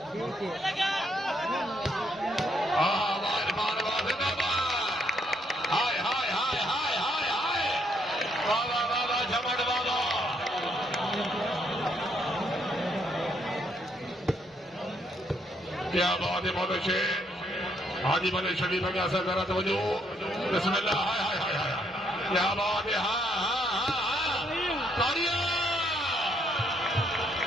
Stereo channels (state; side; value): normal; both; correlation 0.72